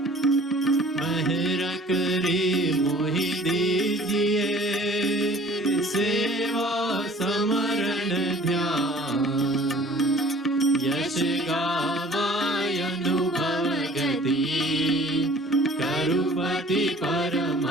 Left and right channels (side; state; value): both; normal; correlation 0.50